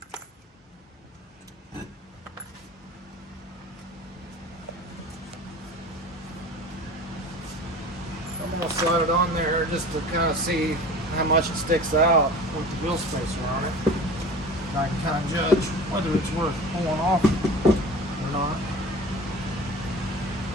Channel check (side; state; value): both; normal; correlation 0.38